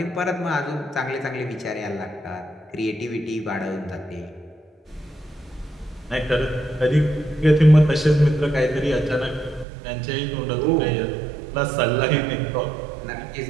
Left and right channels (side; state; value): left; drops out; at 9.7 s